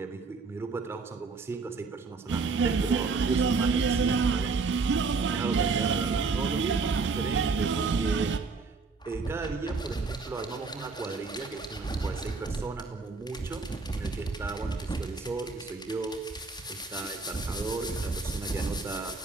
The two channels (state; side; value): quieter; left; 4.3 dB